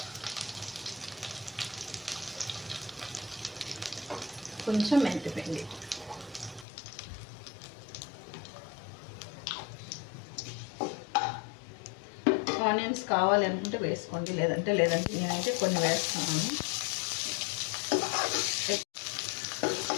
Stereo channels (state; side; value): drops out; right; at 6.7 s